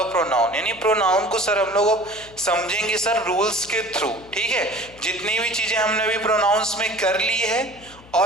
pronoun, यानी प्रोनाउन को सर हम लोग अब समझेंगे सर रूल्स के थ्रू. ठीक है, जितनी भी चीजें हमने अभी प्रोनाउंस में कर ली है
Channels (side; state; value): left; noise; hum, 23 dB below the sound